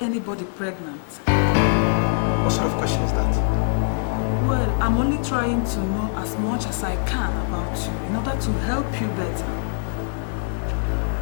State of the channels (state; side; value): silent; right; 57 dB below the other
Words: anybody pregnant? What sort of question is that? Well, I'm only trying to know as much as I can about you in order to help you better.